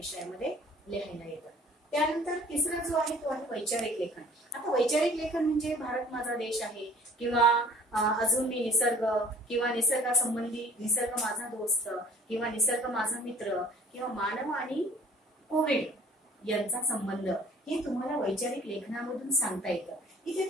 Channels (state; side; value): normal; both; correlation 0.52